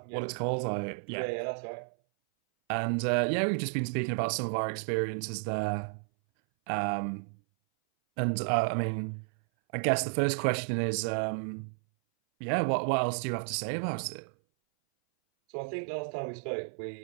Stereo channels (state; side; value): silent; left; 57 dB below the other